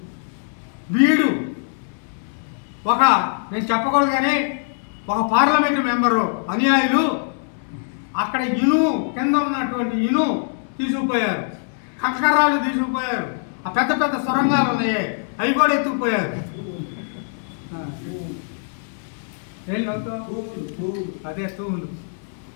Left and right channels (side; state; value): right; silent; digital silence